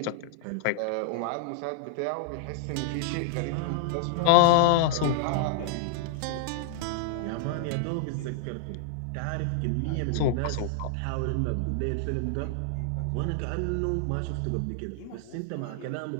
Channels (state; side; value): different; both; correlation -0.01